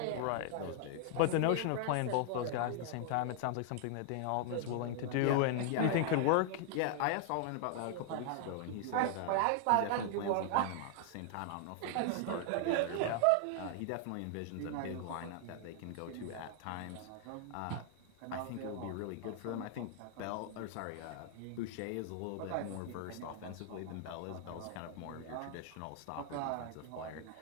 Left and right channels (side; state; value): both; different; correlation 0.00